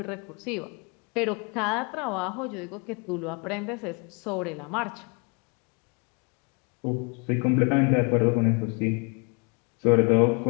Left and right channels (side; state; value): right; quieter; 33.8 dB